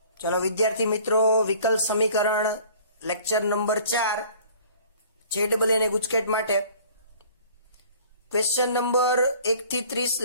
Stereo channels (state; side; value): inverted; both; correlation -0.51